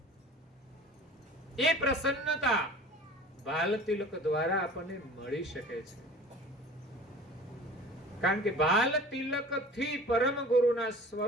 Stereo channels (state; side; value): normal; both; correlation 0.42